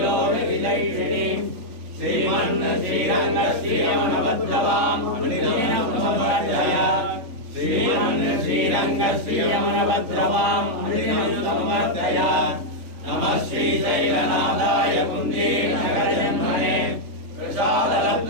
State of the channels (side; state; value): left; late; 3.4 ms